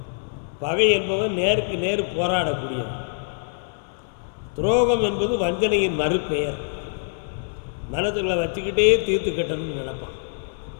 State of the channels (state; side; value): silent; right; digital silence